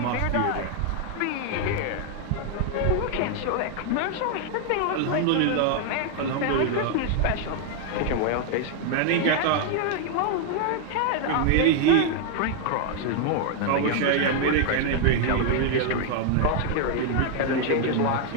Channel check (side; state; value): both; different; correlation 0.00